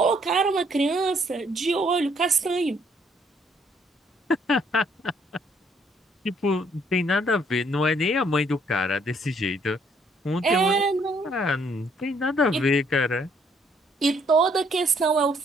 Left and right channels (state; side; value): normal; both; correlation 0.66